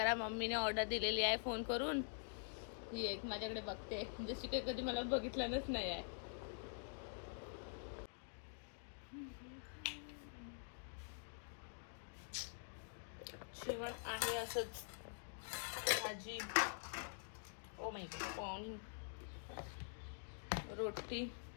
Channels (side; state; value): right; silent; digital silence